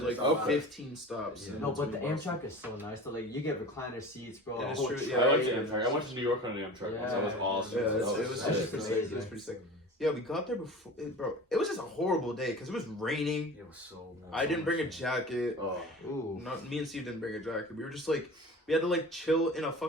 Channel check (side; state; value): both; normal; correlation 0.37